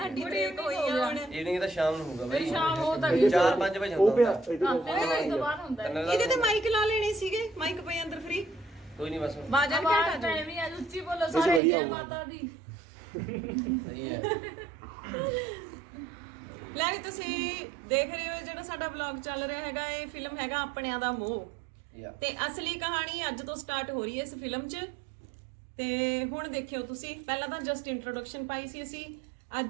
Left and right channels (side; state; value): left; drops out; at 11.6 s